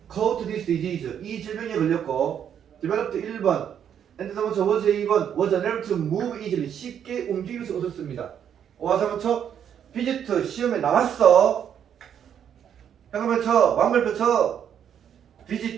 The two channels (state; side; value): quieter; left; 8.9 dB